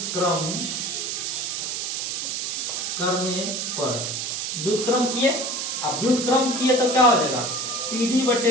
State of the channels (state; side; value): noise; right; hiss, 2 dB below the sound